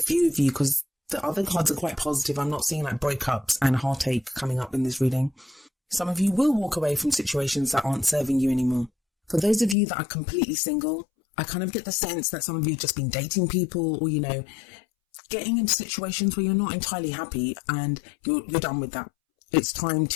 of you because the other cards are quite positive. I'm not seeing like breakups and heartache coming up in this reading. Some of you will walk away from situations that aren't serving you anymore. For those of you that are completely single, I kind of get the sense that some of you have just been dating people or, getting into situations where you're not entirely happy and you're done with that. It's time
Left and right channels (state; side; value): drops out; right; at 9.8 s